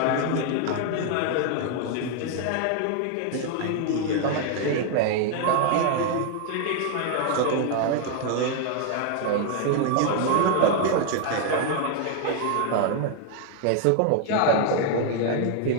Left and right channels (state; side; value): different; both; correlation 0.00